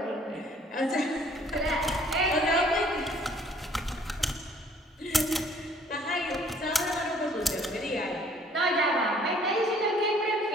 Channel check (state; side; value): normal; both; correlation 0.58